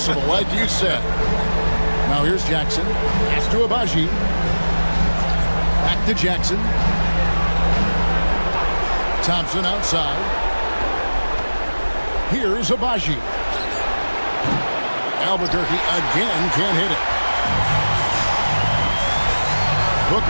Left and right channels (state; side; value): inverted; both; correlation -1.00